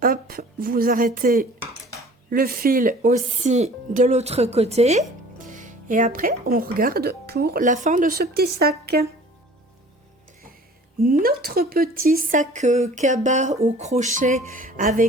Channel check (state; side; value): normal; both; correlation 0.48